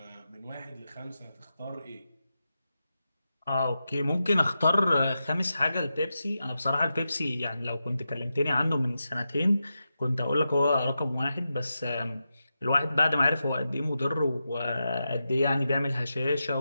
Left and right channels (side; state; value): both; inverted; correlation -0.89